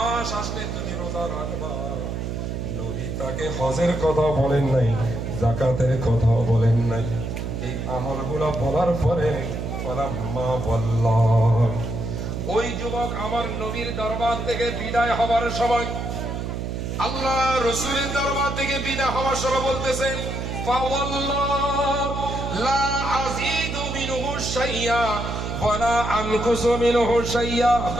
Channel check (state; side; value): noise; right; hum, 4 dB below the sound